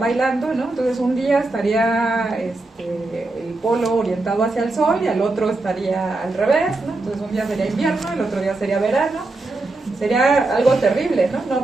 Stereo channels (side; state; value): left; quieter; 3.1 dB